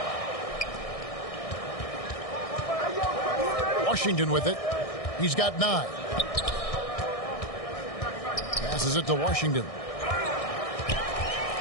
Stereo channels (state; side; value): late; right; 1.6 ms